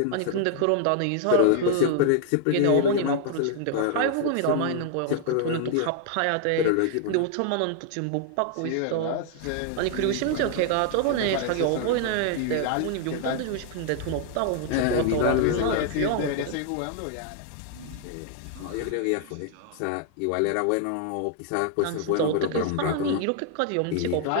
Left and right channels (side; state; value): both; different; correlation 0.00